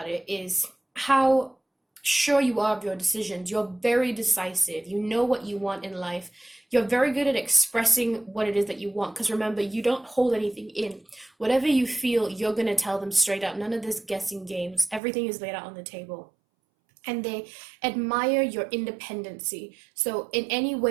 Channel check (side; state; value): left; drops out; at 15.0 s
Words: it is how sure you are of your decisions. You're very decisive. You know what you want in life. You're very good at expressing what it is that you want, because remember, you don't hold anything in. Whatever you feel, you're going to tell them straight up. None of this guessing games. Everything is laid out on the table. And they admire your independency. So in any